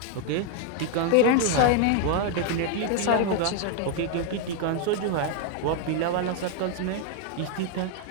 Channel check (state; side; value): different; both; correlation 0.00